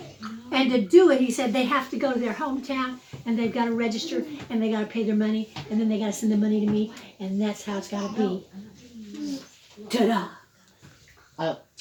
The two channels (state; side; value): identical; both; correlation 1.00